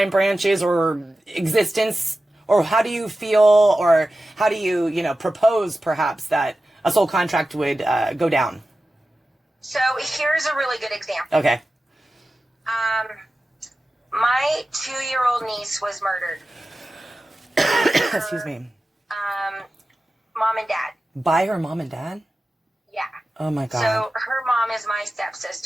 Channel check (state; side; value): normal; both; correlation 0.94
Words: branches or existence? Or how do you feel, or how do you, propose perhaps that a soul contract would go down? So here's a really good example. Okay. My 2-year-old niece was murdered. Excuse me. Mom and dad. By her mom and dad? Yeah. Oh my God. So her mom is my